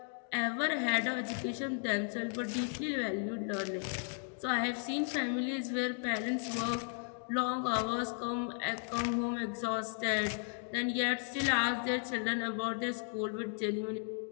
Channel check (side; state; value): right; silent; 54 dB below the other